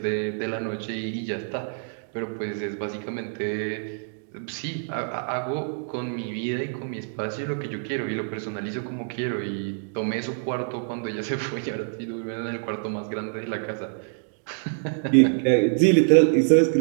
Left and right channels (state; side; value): silent; left; digital silence